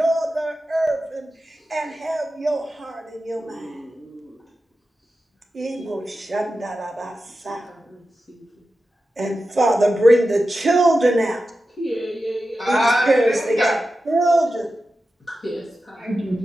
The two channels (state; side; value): normal; both; correlation 0.92